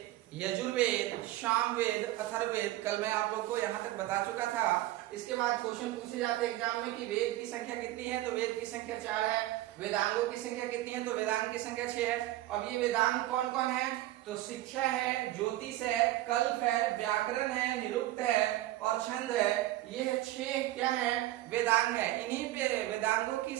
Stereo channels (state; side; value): quieter; left; 16.0 dB